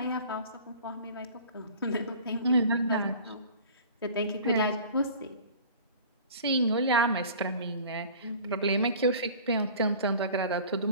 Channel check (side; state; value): both; inverted; correlation -0.44